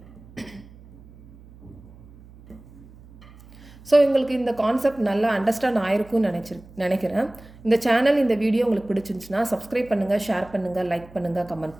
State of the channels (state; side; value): noise; right; hum, 22 dB below the sound